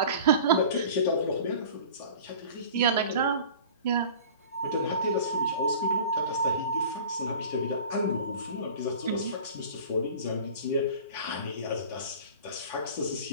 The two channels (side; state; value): both; inverted; correlation -0.41